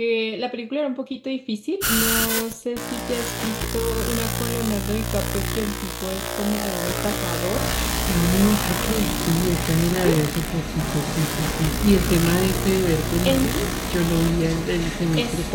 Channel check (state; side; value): identical; both; correlation 1.00